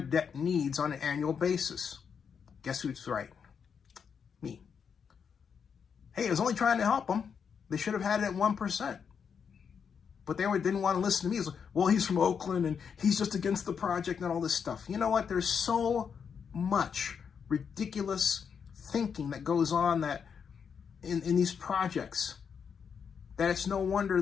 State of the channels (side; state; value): right; quieter; 6.8 dB